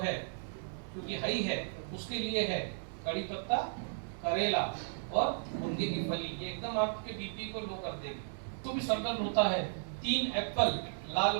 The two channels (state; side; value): silent; left; digital silence